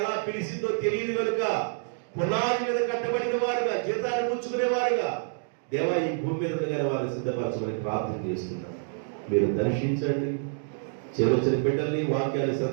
పిలిచిందో తెలియదు కనుక పునాది మీద కట్టబడిన వారుగా, జీతాన్ని పుచ్చుకునేవారుగా దేవా ఈ భూమి మీద వారిని సిద్ధపరచమని ప్రార్థన చేస్తున్నాను. మీరు దర్శించండి. చిన్న బిడ్డల్ని, వాక్యాన్ని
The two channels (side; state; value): left; silent; digital silence